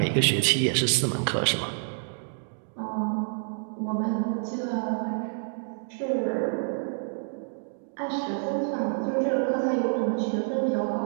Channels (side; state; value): left; silent; digital silence